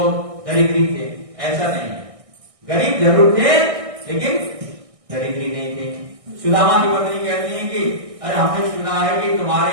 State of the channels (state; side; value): late; left; 1.6 ms